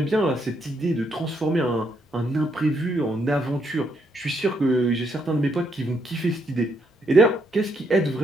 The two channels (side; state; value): both; normal; correlation 0.75